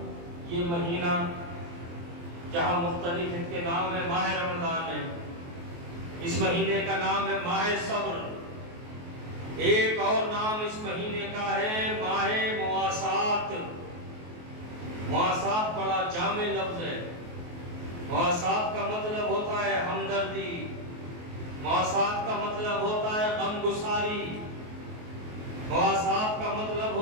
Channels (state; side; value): late; left; 23 ms